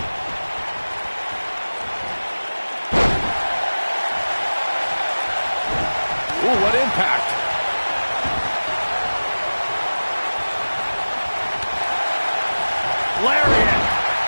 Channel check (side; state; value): both; inverted; correlation -1.00